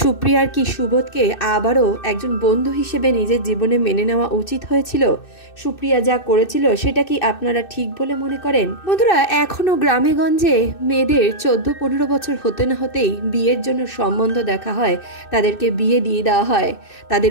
কি সুবোধকে আবারও একজন বন্ধু হিসেবে নিজের জীবনে মেনে নেওয়া উচিত হয়েছিল? সুপ্রিয়া যা করেছিল সেটা কি আপনারা ঠিক বলে মনে করেন? বন্ধুরা, এখনও গ্রামে গঞ্জে মেয়েদের 14-15 বছর হতে না হতেই বিয়ের জন্য সম্বন্ধ দেখা হয়, তাদেরকে বিয়ে দিয়ে দেওয়া হয়। তাদের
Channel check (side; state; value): right; late; 2.6 ms